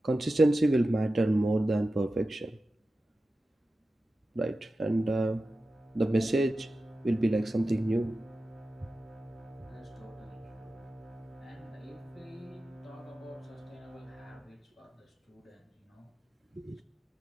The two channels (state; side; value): normal; both; correlation 0.93